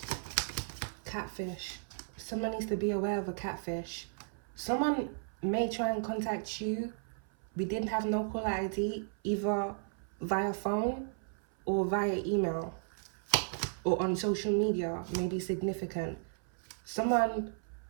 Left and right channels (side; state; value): left; silent; 55 dB below the other